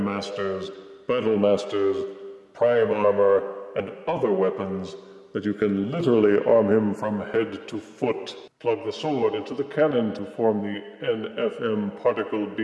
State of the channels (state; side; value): identical; both; correlation 1.00